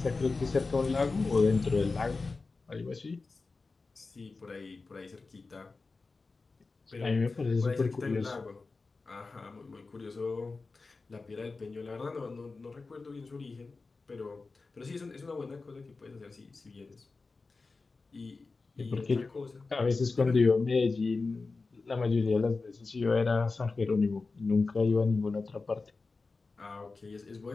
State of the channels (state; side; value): quieter; right; 3.9 dB